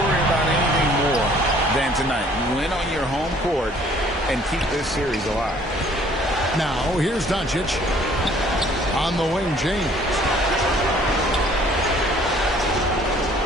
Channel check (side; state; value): both; normal; correlation 0.57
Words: about anything more than tonight. Win on your home court and keep this series alive. Now, here's Doncic. On the wing, James.